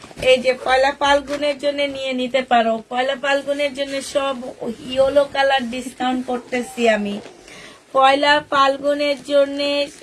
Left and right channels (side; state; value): both; identical; correlation 1.00